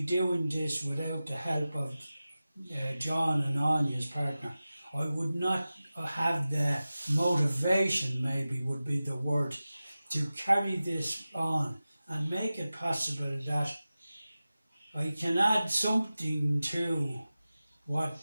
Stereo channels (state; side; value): inverted; both; correlation -0.95